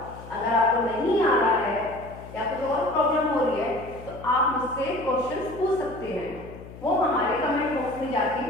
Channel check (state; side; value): noise; left; hum, 16 dB below the sound